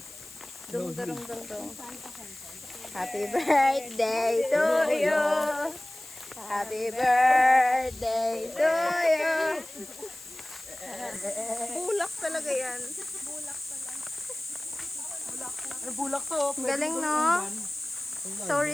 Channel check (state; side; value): noise; left; hiss, 17 dB below the sound